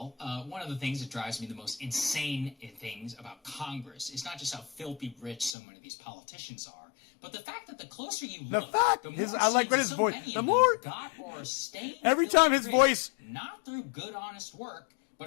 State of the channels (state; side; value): drops out; right; at 5.6 s